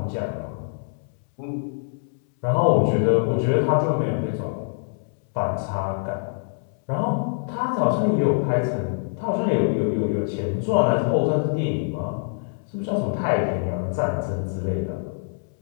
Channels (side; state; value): right; silent; 62 dB below the other